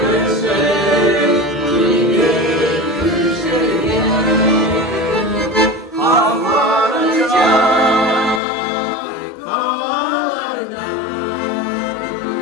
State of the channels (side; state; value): right; drops out; at 8.4 s